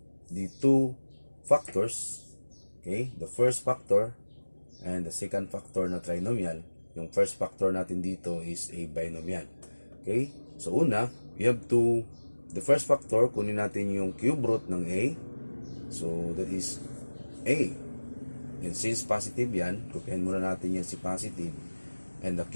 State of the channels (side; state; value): both; inverted; correlation -1.00